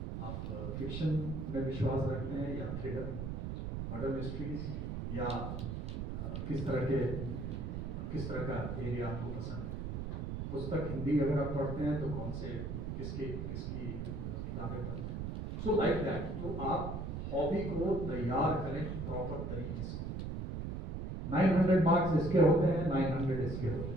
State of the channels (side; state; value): right; noise; rumble, 4 dB below the sound